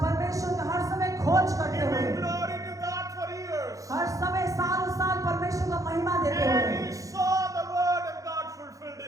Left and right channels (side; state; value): left; late; 0.16 ms